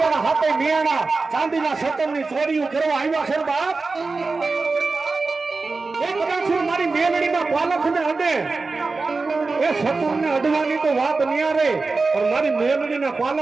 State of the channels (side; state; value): left; quieter; 3.9 dB